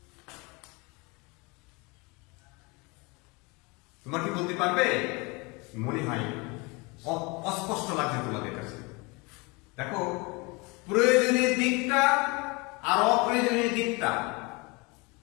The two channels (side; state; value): right; quieter; 27.3 dB